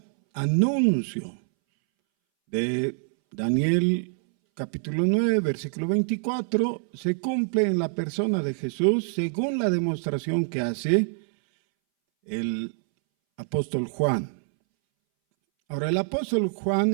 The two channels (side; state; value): left; silent; 61 dB below the other